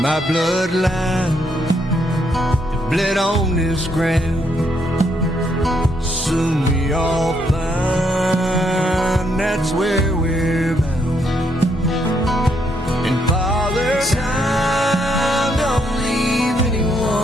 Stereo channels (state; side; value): normal; both; correlation 0.75